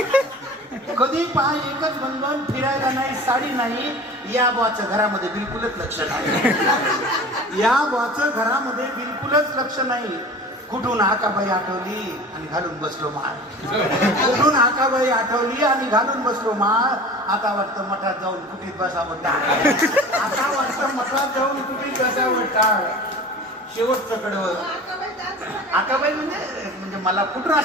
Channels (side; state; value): both; normal; correlation 0.39